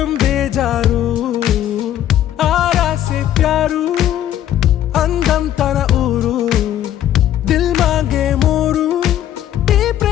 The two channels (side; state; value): right; quieter; 11.7 dB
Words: బేజారు ఆరా సే ప్యారు అందం తన ఊరు దిల్ మాంగే మోరు ఈ